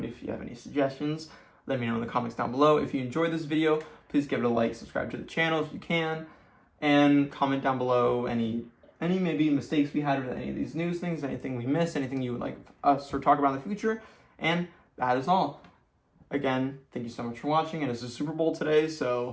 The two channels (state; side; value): identical; both; correlation 1.00